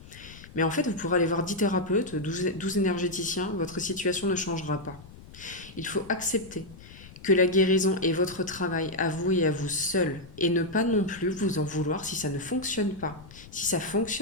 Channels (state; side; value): noise; left; rumble, 18 dB below the sound